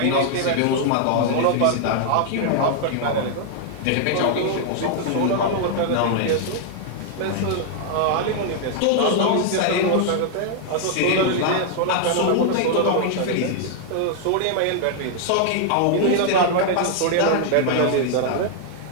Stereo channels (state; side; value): different; both; correlation -0.01